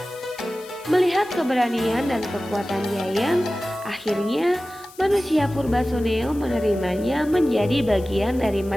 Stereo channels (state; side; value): noise; left; hiss, 22 dB below the sound